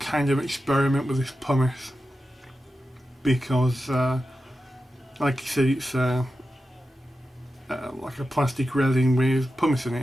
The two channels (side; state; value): both; normal; correlation 0.91